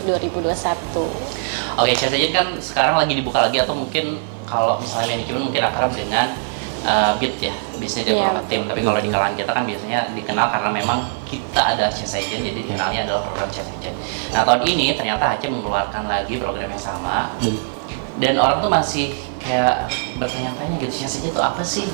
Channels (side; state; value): left; silent; digital silence